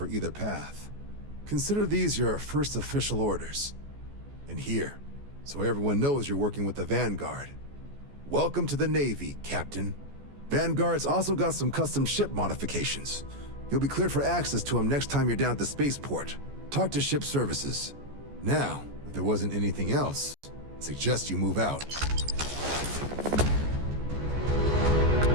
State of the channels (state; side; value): late; left; 14 ms